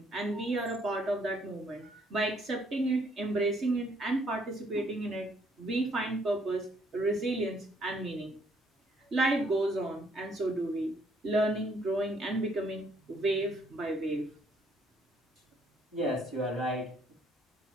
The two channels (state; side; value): normal; both; correlation 0.67